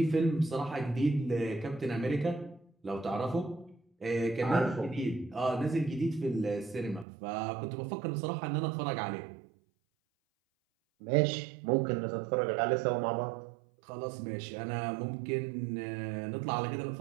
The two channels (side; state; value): left; drops out; at 7.1 s